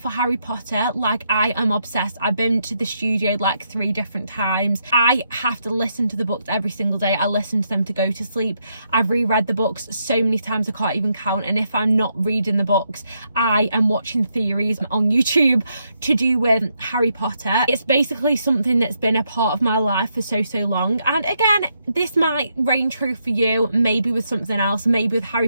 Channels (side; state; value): both; inverted; correlation -0.78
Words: Harry Potter. Like, I am obsessed. I've been to the studio like 3 different times. I have to listen to the books every single day. I listen to them to go to sleep. I've reread the books so many times I can't even count, and if I'm not reading the books, I am watching theories on YouTube to do with Harry Potter. It's basically something that's been a part of my life for so long. And again, this might reign true for you, maybe with something else, maybe with Harry